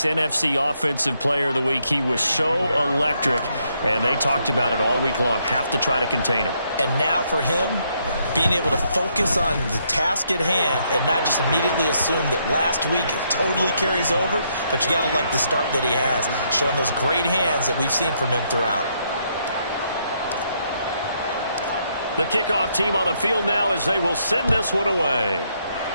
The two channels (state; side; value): inverted; both; correlation -0.74